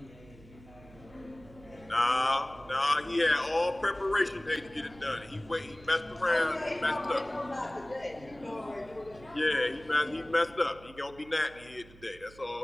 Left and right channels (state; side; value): noise; right; hum, 21 dB below the sound